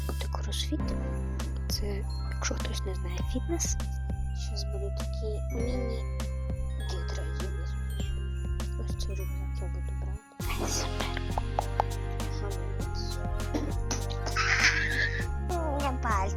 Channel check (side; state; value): both; identical; correlation 1.00